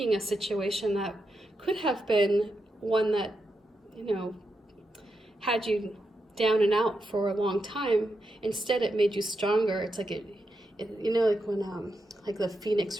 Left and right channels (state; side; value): normal; both; correlation 0.85